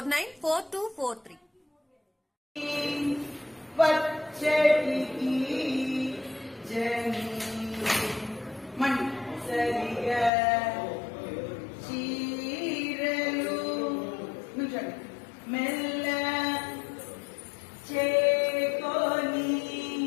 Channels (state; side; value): drops out; right; at 10.3 s